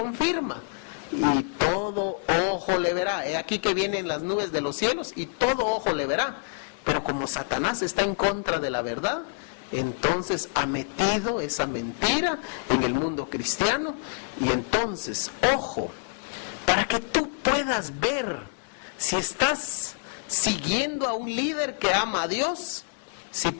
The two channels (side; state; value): right; silent; 60 dB below the other